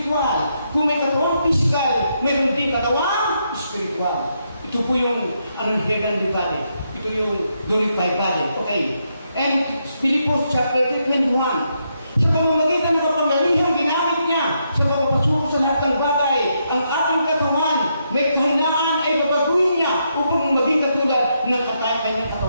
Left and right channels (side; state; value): both; inverted; correlation -0.79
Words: Kung may katawang pisikal, meron din katawang espiritual. Ito po yung heavenly body. Ito yung glorified body. Okay. And Philippians chapter 21. Sa pamamagitan ng kapangyarihan ginamit niya sa pagpapasuko sa lahat ng bagay, ang aking katawan, may kahinaan ay babaguhin niya upang maging katulad ng kanyang